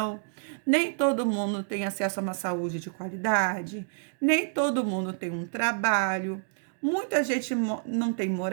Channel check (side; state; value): left; silent; digital silence